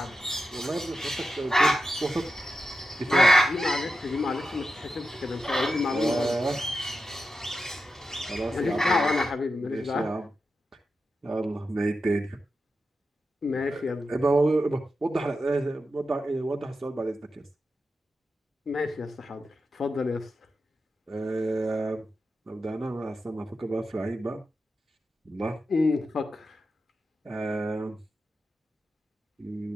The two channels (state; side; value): normal; both; correlation 0.90